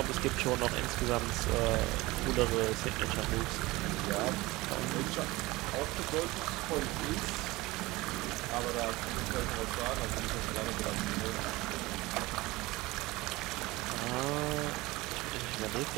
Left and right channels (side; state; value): left; quieter; 20.6 dB